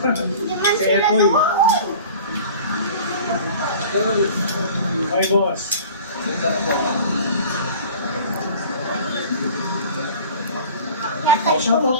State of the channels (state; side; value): inverted; both; correlation -0.42